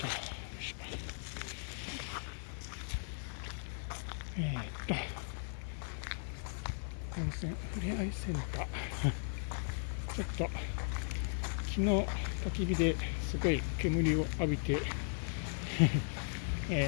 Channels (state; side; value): silent; right; 53 dB below the other